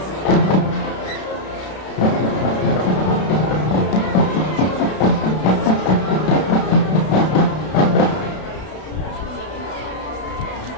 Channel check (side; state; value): right; late; 32 ms